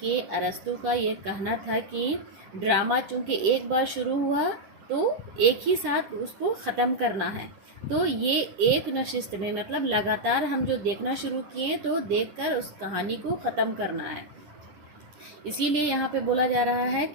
अरस्तू का ये कहना था कि ड्रामा चूँकि एक बार शुरू हुआ तो एक ही साथ उसको ख़त्म करना है। तो ये एक नशिस्त में मतलब लगातार हम जो देखना शुरू किए तो देखकर उस कहानी को ख़त्म करना है। इसीलिए यहाँ पे बोला जा रहा है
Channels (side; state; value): left; late; 10 ms